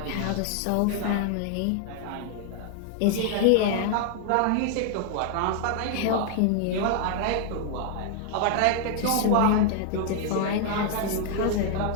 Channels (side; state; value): both; different; correlation 0.00